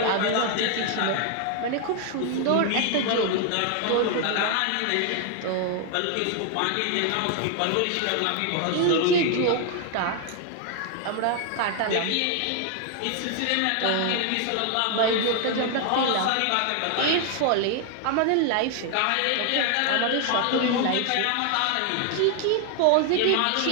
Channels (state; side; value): different; both; correlation 0.00